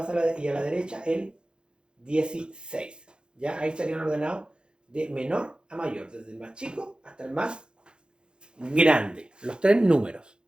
la derecha el 16. ¿Ya? Ahí estarían ordenados de menor a mayor, desde el más chico hasta el más grande, los tres números.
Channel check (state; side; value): late; left; 0.050 ms